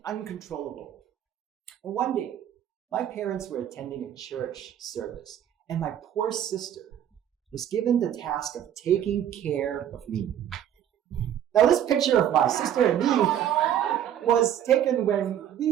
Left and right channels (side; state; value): left; quieter; 10.3 dB